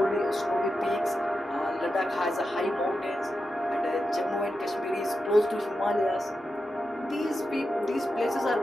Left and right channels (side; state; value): both; normal; correlation 0.89